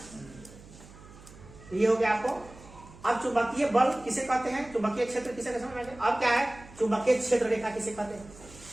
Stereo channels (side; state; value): right; noise; hum, 20 dB below the sound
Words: तो ये हो गया आपको। अब चुंबकीय बल किसे कहते हैं, चुंबकीय क्षेत्र किसे समझ में। अब क्या है, चुंबकीय क्षेत्र रेखा किसे कहते हैं,